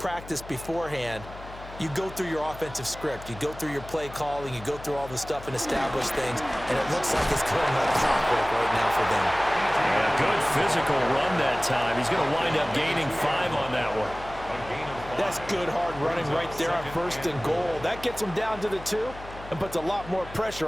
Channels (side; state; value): left; noise; hum, 15 dB below the sound